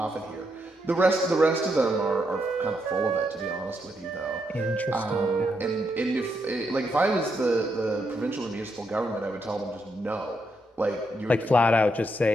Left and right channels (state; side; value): normal; both; correlation 0.80